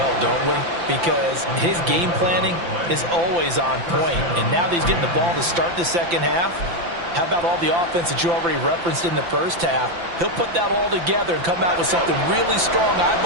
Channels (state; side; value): late; left; 5.9 ms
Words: don't we? Because his game planning is always on point. And now that he's getting the ball to start the second half, how about all the offense that you already referenced in the first half? He'll put that all together and come out with something really strong, I